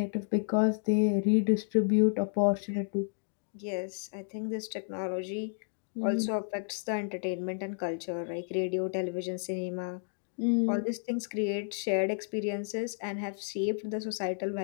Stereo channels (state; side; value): silent; right; digital silence